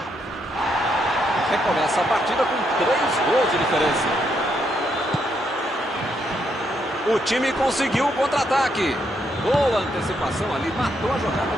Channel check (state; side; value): normal; both; correlation 0.76